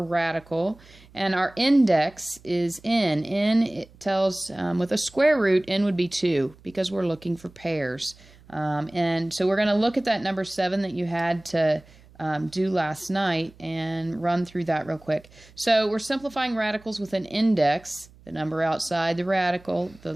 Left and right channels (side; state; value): right; noise; hum, 25 dB below the sound